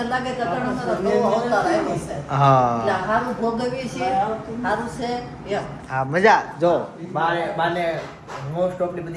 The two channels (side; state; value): both; identical; correlation 1.00